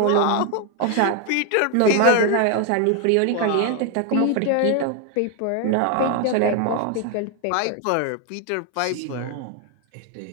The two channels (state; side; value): different; both; correlation 0.01